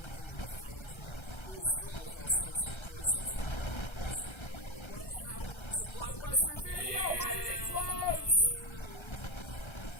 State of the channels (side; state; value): right; late; 1.3 ms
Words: in the foundry. It was filled with all sorts of poisons that only the boys knew about. What happened to Blockbuster Video? Why did it